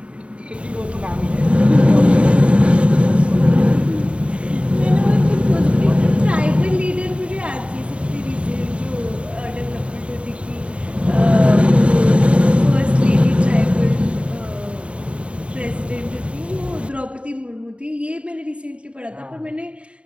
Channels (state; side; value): late; left; 0.060 ms